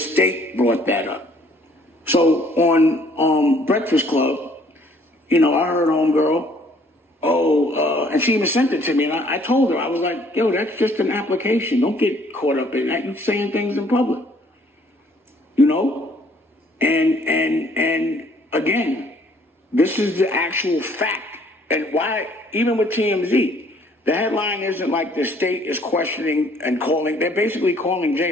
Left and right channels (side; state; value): both; normal; correlation 0.61